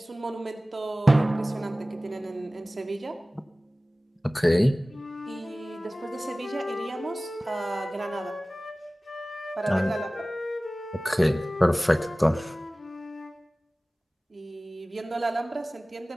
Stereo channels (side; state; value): both; normal; correlation 0.98